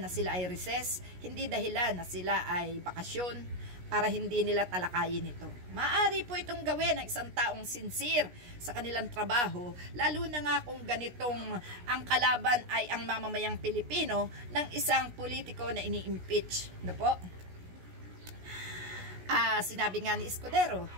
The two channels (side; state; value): left; late; 16 ms